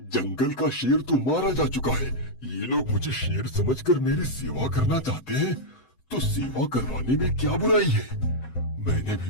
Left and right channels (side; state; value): right; late; 7.8 ms